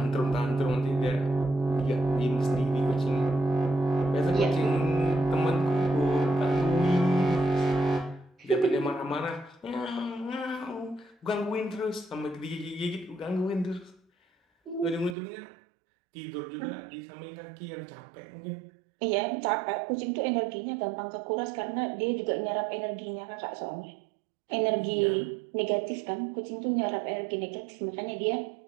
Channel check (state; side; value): drops out; left; at 15.2 s